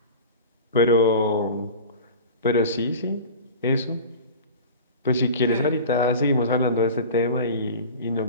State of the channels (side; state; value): both; inverted; correlation -0.35